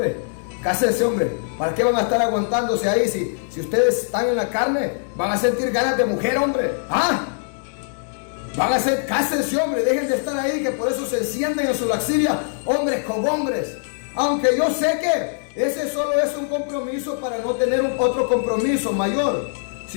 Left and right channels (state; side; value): silent; right; digital silence